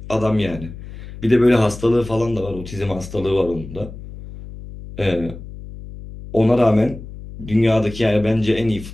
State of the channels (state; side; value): noise; left; hum, 13 dB below the sound